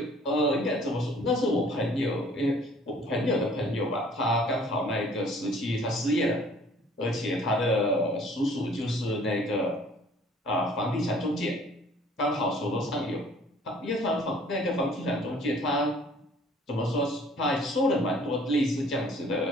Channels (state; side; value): normal; both; correlation 0.55